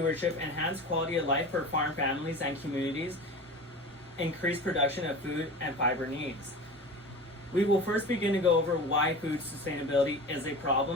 enhance quality of life for farm families and communities, increase production of food and fiber needs. We will first begin to go over why food sustainability is a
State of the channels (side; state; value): both; normal; correlation 0.33